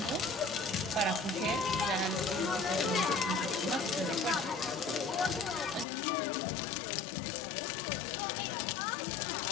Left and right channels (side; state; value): right; drops out; at 5.9 s